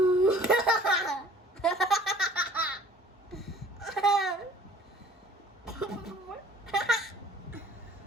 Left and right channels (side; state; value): both; normal; correlation 0.52